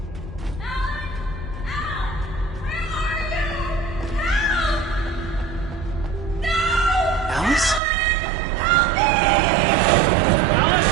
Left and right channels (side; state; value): left; drops out; at 7.8 s